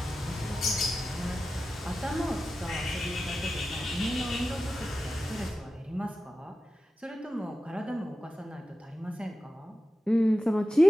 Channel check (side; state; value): both; normal; correlation 0.93